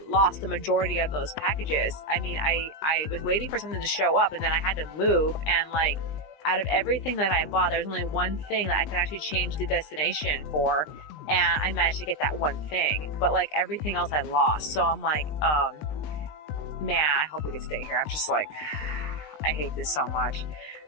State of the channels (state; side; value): late; right; 20 ms